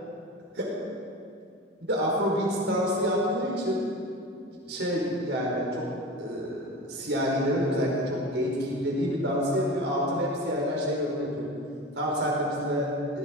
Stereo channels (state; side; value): normal; both; correlation 0.31